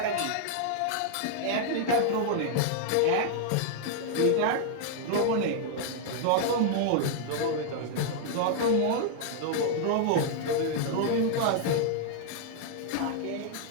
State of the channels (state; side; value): different; both; correlation -0.01